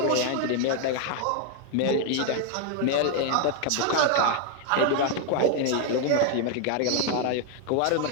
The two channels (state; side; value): different; both; correlation 0.01